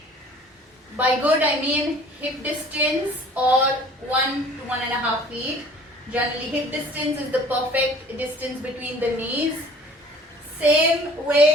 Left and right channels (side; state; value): both; normal; correlation 0.50